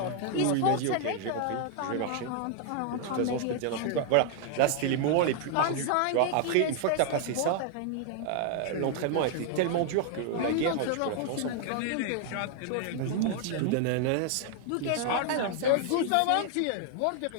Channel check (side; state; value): both; different; correlation 0.00